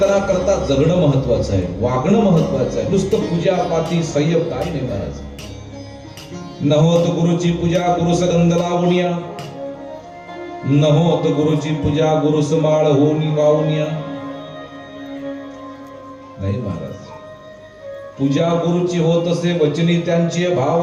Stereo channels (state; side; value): identical; both; correlation 1.00